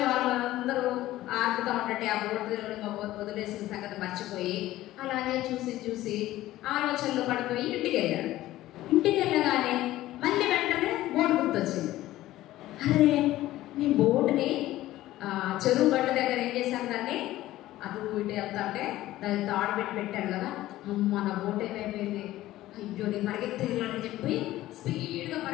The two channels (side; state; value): right; quieter; 15.5 dB